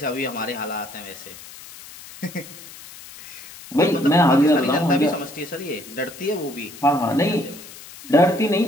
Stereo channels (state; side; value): noise; left; hiss, 17 dB below the sound